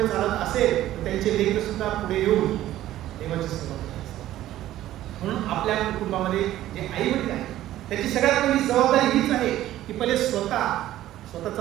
चालत असेल तर त्यांचे लेकर सुद्धा पुढे येऊन देवाची सेवा करतात. म्हणून आपल्या कुटुंबामध्ये जे आई वडील आहेत त्याची सगळ्यात पहिली जबाबदारी हीच आहे की पहिले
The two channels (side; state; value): left; quieter; 13.8 dB